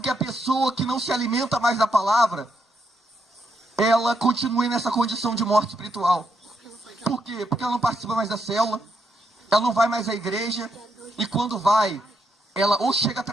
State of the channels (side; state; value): both; normal; correlation 0.78